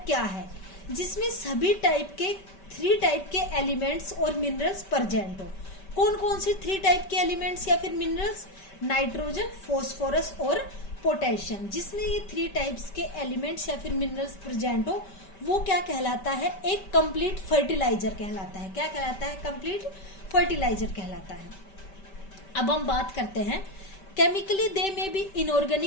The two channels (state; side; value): late; right; 5.1 ms